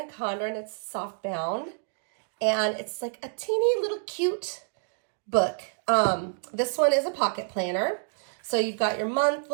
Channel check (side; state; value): left; silent; digital silence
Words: Condren. It's soft bound, and it's like a teeny little cute book. This one is a pocket planner. So you've got your